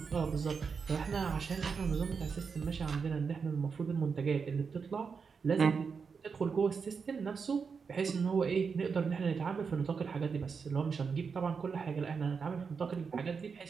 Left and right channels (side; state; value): left; quieter; 5.6 dB